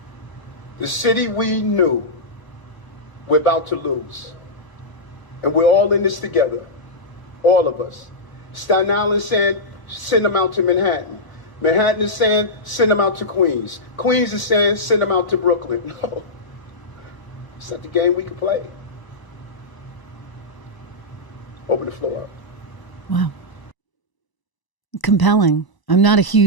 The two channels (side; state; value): right; late; 1.0 ms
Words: the city we knew we're about to lose. And we're all in this together, all of us. Staten Island is saying, send them out to Manhattan. Manhattan is saying, send them out to Queens. Queens is saying, send them out to Brooklyn. No, it's not the game we can play. Open the floor up. Wow. Compelling. I'm not a